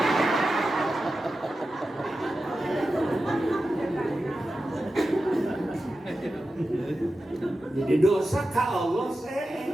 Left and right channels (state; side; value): normal; both; correlation 0.92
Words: Jadi dosa ke Allah